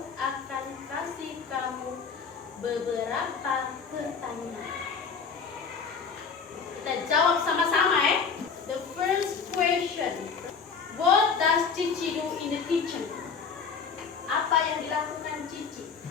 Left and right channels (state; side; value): quieter; right; 5.7 dB